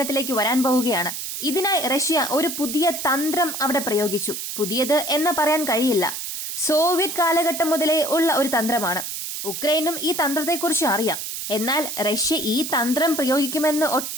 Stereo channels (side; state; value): right; noise; hiss, 6 dB below the sound